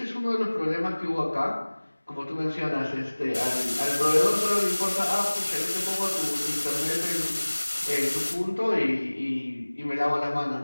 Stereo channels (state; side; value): inverted; both; correlation -1.00